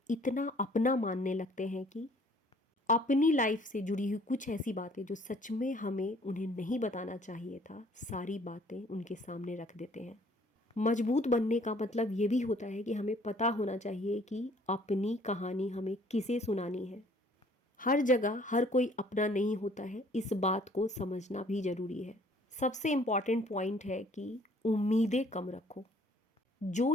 इतना अपना मानने लगते हैं कि अपनी लाइफ से जुड़ी हुई कुछ ऐसी बातें जो सच में हमें उन्हें नहीं बताना चाहिए था, सारी बातें उनके सामने रख देते हैं। मजबूत बनने का मतलब ये भी होता है कि हमें पता होना चाहिए कि अपनी कहानी हमें किसे सुनानी है। हर जगह हर कोई अपना नहीं होता है, इस बात को समझना भी ज़रूरी है। सबसे इम्पॉर्टेंट पॉइंट है कि उम्मीदें कम रखो। जो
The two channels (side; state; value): both; normal; correlation 0.58